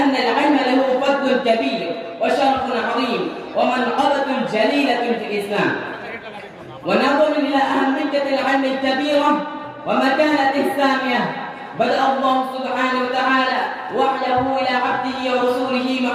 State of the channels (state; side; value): identical; both; correlation 1.00